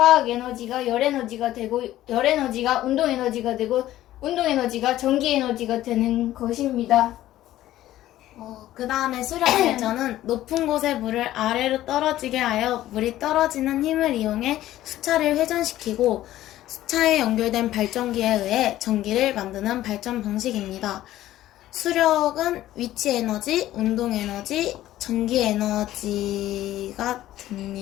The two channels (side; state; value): right; quieter; 14.1 dB